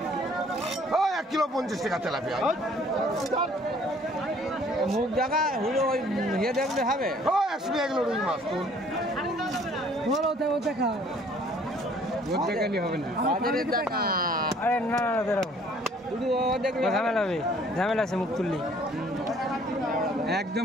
kilo 50 টাকা tilapia. মুখ দেখা হলো ওই ইয়ে দেখলে হবে। 100 টাকা কিলো রুই মাছ তো। দেখা দেখালি হবে না। বাজারের দেখা। আরে না না বেরো। শুধু ও দেখলে ঝামেলা হবে। ঝামেলা আছে মুখ তুললি। একদম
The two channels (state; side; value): normal; both; correlation 0.58